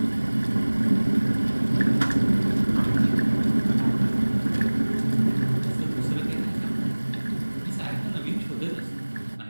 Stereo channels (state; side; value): inverted; both; correlation -1.00